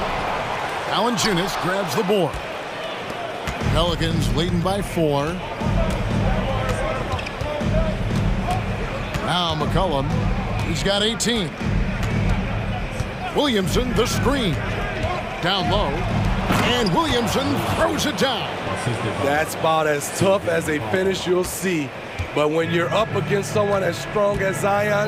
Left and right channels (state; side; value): identical; both; correlation 1.00